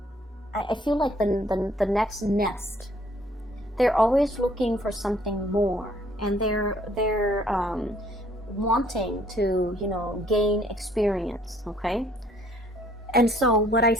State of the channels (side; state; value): both; normal; correlation 0.62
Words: I feel like the next nest. They're always looking for something more. And they're wanting to, you know, gain experience, okay? And so what I